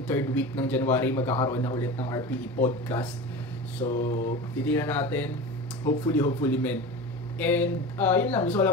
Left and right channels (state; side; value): normal; both; correlation 0.30